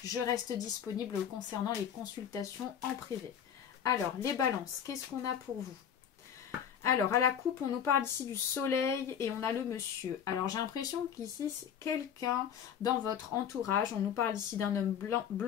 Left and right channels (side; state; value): right; quieter; 8.5 dB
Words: je reste disponible concernant les consultations en privé. Alors, les balances, qu'est-ce qu'on a pour vous? Alors, à la coupe, on nous parle ici du soleil et on a le monsieur. Alors, j'ai l'impression qu'ici, quelqu'un dans votre entourage, on nous parle ici d'un homme